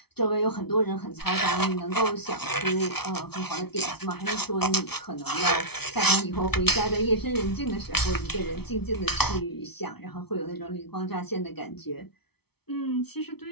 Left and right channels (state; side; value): late; right; 0.97 ms